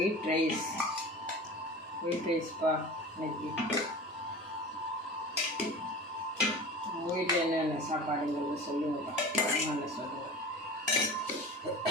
ரைஸ்ப்பா இன்னைக்கு. வீட்டில் என்னென்ன சாப்பாடுங்கிறது சொல்லுங்கப்பா, என்னென்ன சொல்லுங்கள்.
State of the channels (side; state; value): both; normal; correlation 0.35